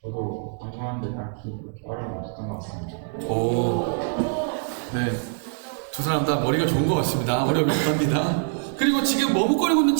저도 방송하는데 딱히 그렇게 어려움이 없었던 것 같습니다. 네. 두 사람 다 머리가 좋은 것 같습니다. 어려움이 없답니다. 그리고 지금 머뭇거리고 있는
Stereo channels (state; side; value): silent; left; digital silence